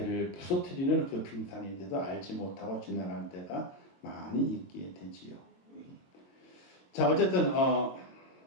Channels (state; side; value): late; right; 22 ms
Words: 부서뜨리는 그 빙산인데도 알지 못하고 지나갈 때가 많이 있게 되지요. 자, 어쨌든